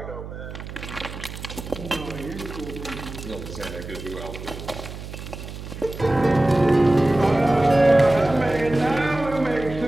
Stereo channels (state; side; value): noise; right; hum, 11 dB below the sound